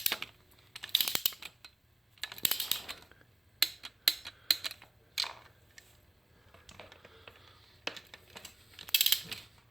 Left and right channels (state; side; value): normal; both; correlation 0.90